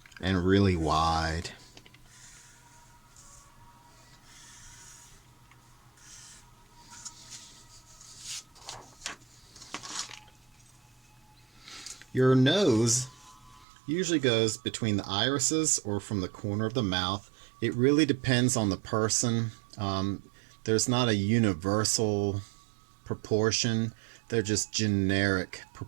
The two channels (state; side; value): drops out; left; at 13.7 s